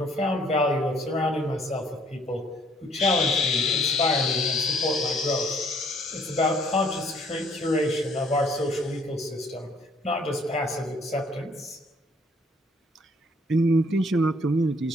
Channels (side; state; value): both; normal; correlation 0.62